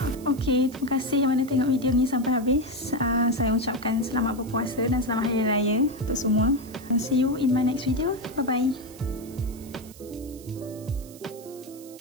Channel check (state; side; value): noise; right; hiss, 20 dB below the sound